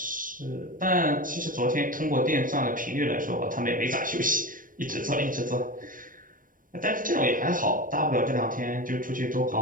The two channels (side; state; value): left; late; 0.40 ms